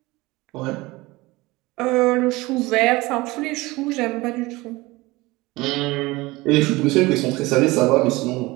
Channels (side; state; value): left; quieter; 21.3 dB